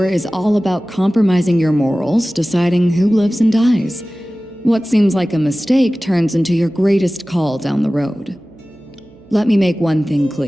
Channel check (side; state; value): right; noise; hum, 27 dB below the sound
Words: is all about compromising your morals, deciding who lives and dies. What seems like a mistake turns into your greatest call down the road. Let me make one thing